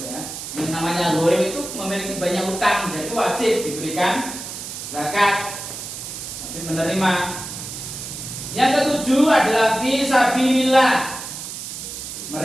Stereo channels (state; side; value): noise; right; hiss, 8 dB below the sound